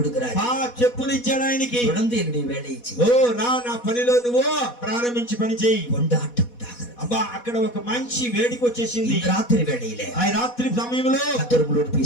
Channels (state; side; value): late; right; 4.1 ms